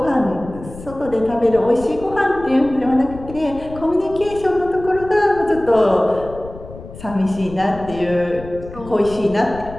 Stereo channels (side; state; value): left; noise; rumble, 15 dB below the sound